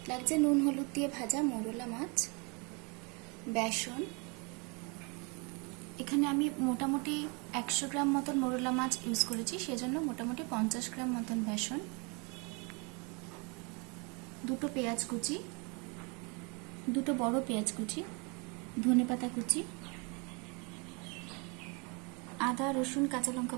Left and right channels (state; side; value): quieter; left; 31.5 dB